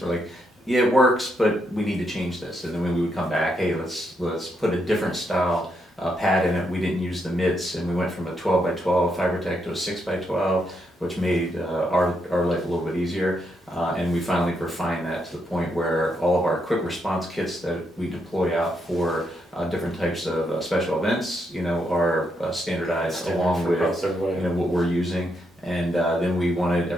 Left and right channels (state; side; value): normal; both; correlation 0.79